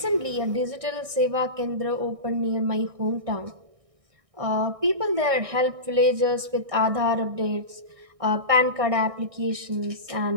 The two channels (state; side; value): late; left; 1.6 ms